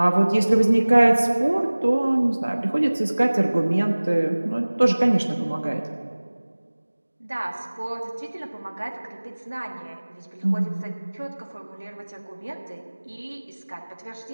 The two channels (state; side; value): inverted; both; correlation -1.00